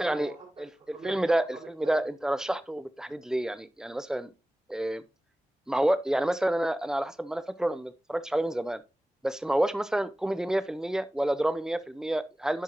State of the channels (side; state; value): both; normal; correlation 0.96